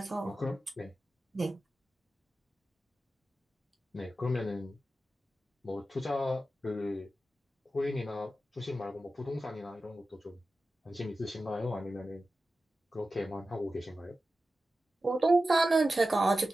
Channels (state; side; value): normal; both; correlation 0.93